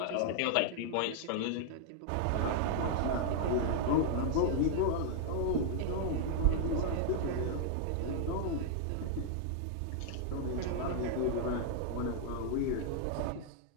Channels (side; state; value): both; different; correlation -0.01